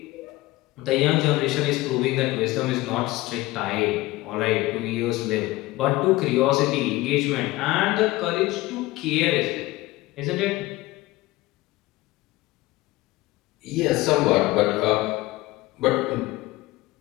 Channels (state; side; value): quieter; right; 19.1 dB